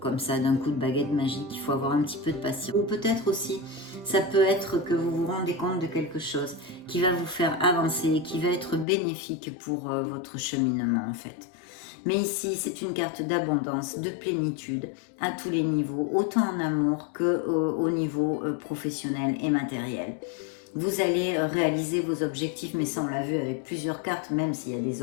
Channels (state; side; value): drops out; right; at 8.8 s